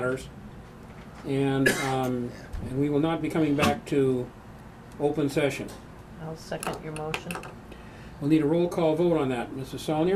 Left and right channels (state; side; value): identical; both; correlation 1.00